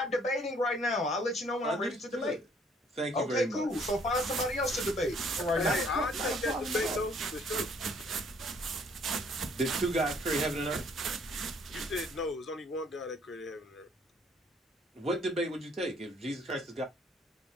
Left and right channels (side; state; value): both; normal; correlation 0.62